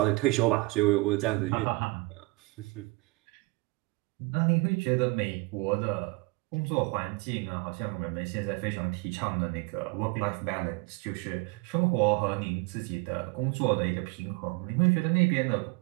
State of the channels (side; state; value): left; quieter; 24.5 dB